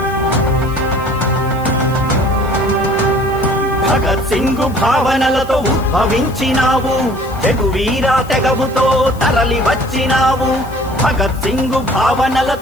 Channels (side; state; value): left; noise; hiss, 22 dB below the sound